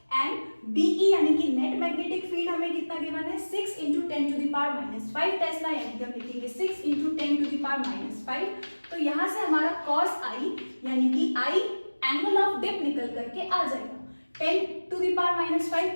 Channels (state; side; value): inverted; both; correlation -1.00